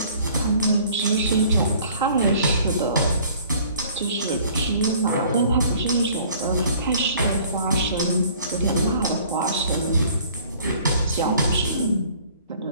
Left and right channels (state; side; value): inverted; both; correlation -0.54